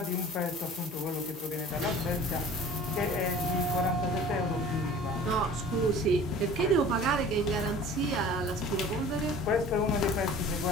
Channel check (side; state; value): both; normal; correlation 0.44